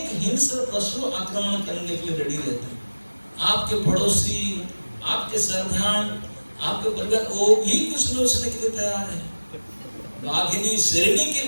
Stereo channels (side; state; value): both; inverted; correlation -1.00